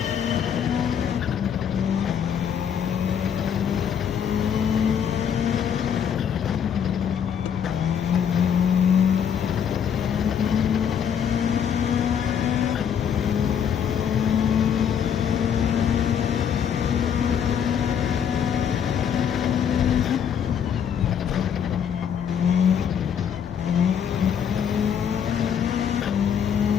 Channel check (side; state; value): right; quieter; 8.1 dB